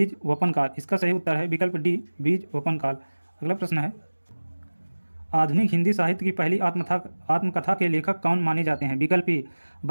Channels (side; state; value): both; inverted; correlation -1.00